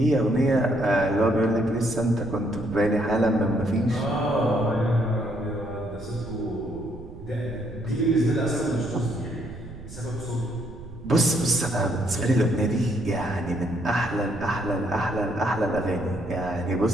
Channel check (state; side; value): noise; right; rumble, 15 dB below the sound